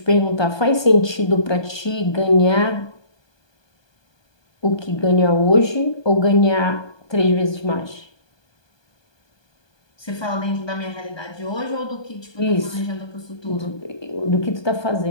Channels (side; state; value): right; late; 1.2 ms